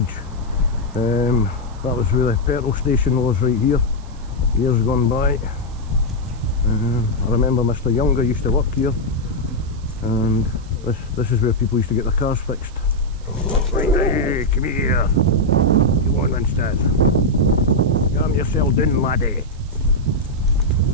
That was where the petrol station was, right here. years gone by. I remember Mr. Younger used to work here, and this is where people used to get their cars fixed. Right, hey, come here. Come on, Winston. Calm yourself down, laddie.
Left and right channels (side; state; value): right; noise; hiss, 27 dB below the sound